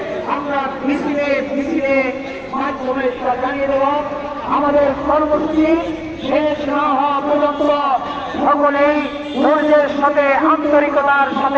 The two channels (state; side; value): identical; both; correlation 1.00